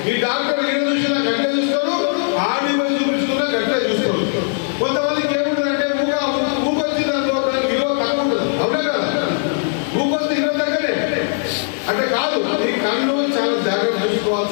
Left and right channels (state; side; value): silent; right; digital silence